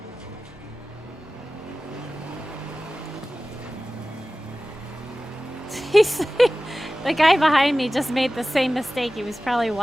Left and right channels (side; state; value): both; normal; correlation 0.96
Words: The guy behind me just made the same mistake. He was probably